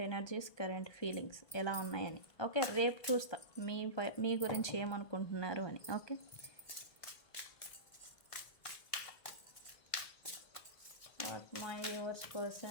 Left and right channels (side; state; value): right; late; 1.6 ms